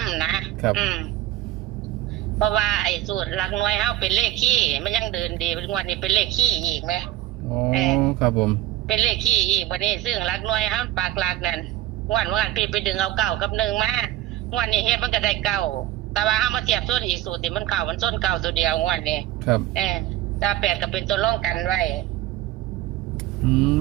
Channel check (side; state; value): left; quieter; 14.4 dB